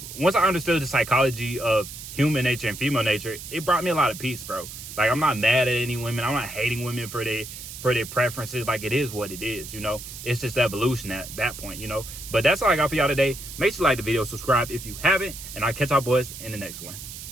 once I understood the psychology of human nature and female nature, it brought me a lot of peace, bro. Like, I'm not mad at any women. I'm not hating women for their preferences. Like, it is what it is, you know. It's just evolution at that point, you know. But that's all I got for y'all today. Make sure you like the video, subscribe if you haven't, and I'll catch y'all boys in the next one.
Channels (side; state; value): right; noise; hiss, 11 dB below the sound